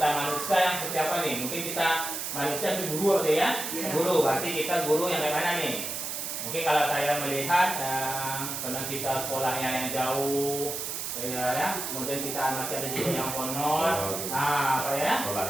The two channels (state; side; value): noise; right; hiss, 4 dB below the sound